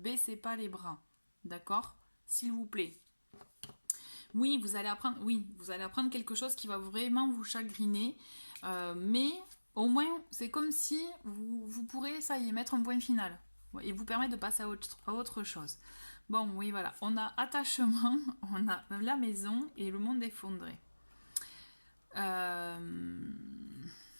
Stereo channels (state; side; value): inverted; both; correlation -1.00